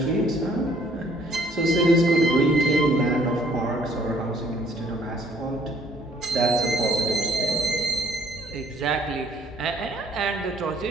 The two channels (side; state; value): both; normal; correlation 0.60